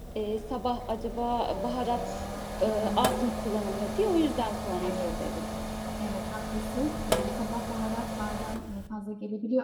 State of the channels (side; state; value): both; identical; correlation 1.00